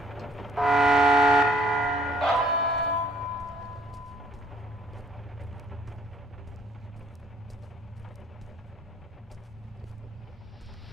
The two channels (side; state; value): both; normal; correlation 0.62